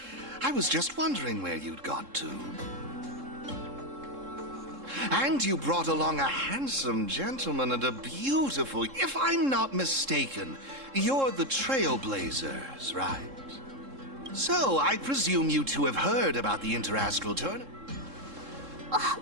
I was just wondering where you'd got to. And you brought along a handsome gentleman and a beautiful... If I'm not mistaken, you're the Trailblazers, right? So, I presume you two have heard about the Interastral Tournament. Oh,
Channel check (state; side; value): late; left; 3.7 ms